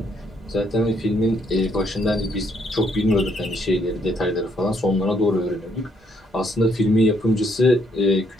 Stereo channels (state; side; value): normal; both; correlation 0.71